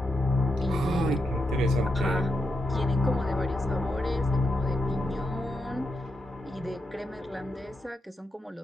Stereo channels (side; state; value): both; normal; correlation 0.85